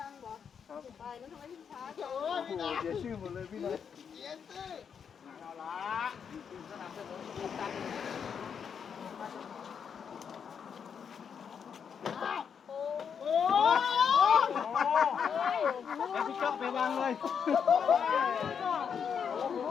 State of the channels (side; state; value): right; quieter; 7.1 dB